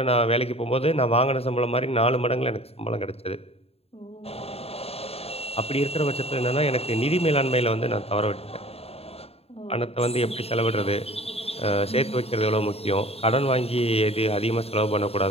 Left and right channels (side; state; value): right; late; 0.29 ms